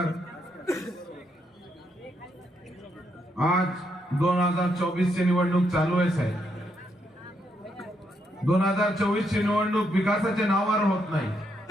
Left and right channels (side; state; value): both; normal; correlation 0.78